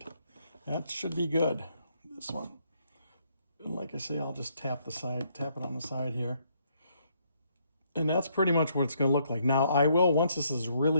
That should be good, this one. And like I say, I'll just tap it on the side here. And that's pretty much what it's going to look like. Now, once this is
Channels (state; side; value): inverted; both; correlation -0.71